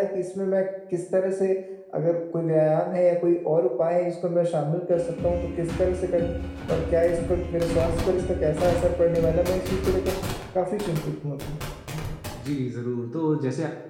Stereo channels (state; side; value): identical; both; correlation 1.00